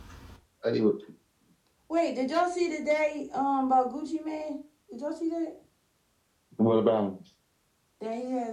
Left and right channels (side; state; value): both; identical; correlation 1.00